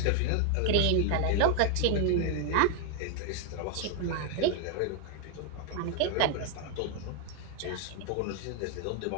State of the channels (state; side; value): different; both; correlation 0.00